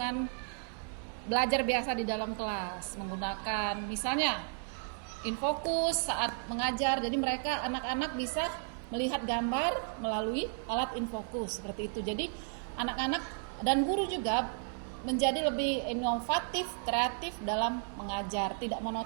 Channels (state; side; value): silent; left; 55 dB below the other